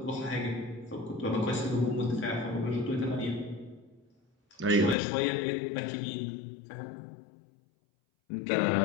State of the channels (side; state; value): right; drops out; at 5.0 s